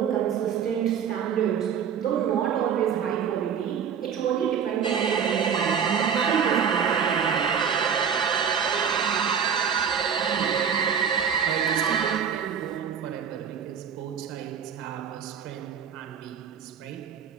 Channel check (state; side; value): quieter; left; 7.5 dB